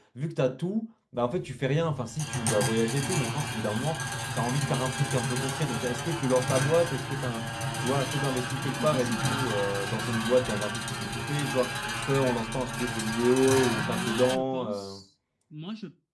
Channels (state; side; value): identical; both; correlation 1.00